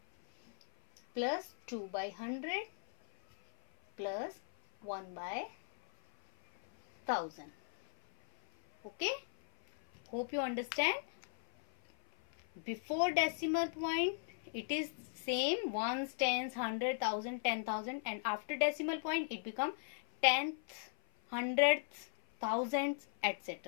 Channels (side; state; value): right; silent; 53 dB below the other